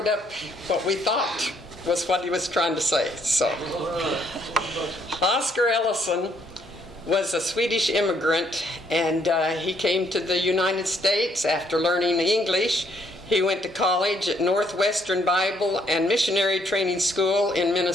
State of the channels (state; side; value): normal; both; correlation 0.69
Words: up what we thought was what he was trying to say. So, Oscar Ellison was a Swedish immigrant, and he came to the United States after learning English. He went to college at Northwestern Bible and Missionary Training School in